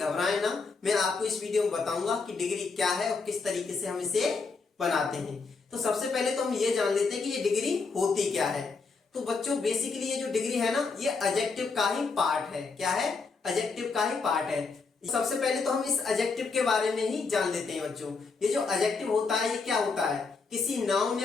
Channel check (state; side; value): quieter; right; 4.5 dB